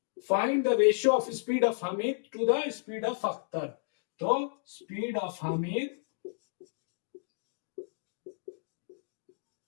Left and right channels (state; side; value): silent; right; digital silence